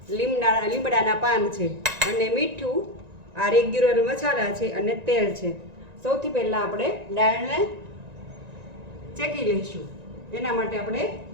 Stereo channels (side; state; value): left; late; 1.9 ms